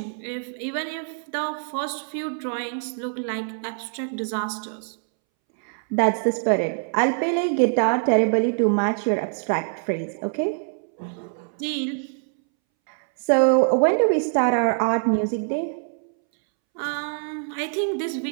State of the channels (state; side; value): silent; left; 62 dB below the other